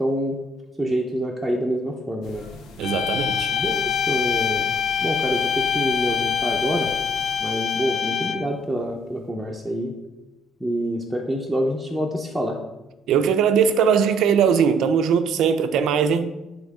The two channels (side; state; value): both; normal; correlation 0.62